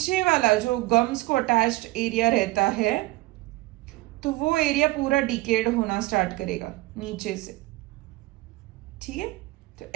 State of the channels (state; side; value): quieter; left; 19.6 dB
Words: वाला जो गम्स को अटैच्ड एरिया रहता है, तो वो एरिया पूरा डिकेड होना स्टार्ट करेगा नीचे से, ठीक है। तो